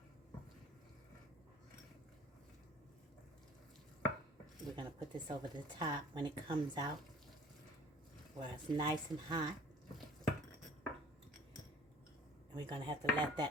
We're going to put this over the top when it comes out, where it's nice and hot. And we're going to have to let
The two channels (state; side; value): normal; both; correlation 0.51